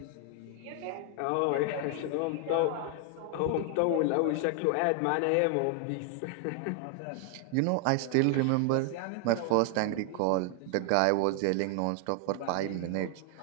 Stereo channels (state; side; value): different; both; correlation 0.00